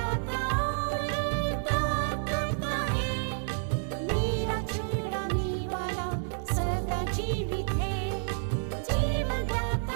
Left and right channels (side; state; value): left; silent; 58 dB below the other